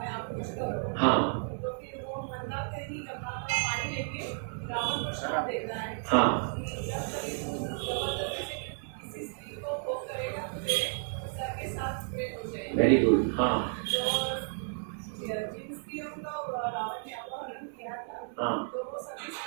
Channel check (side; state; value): left; silent; 56 dB below the other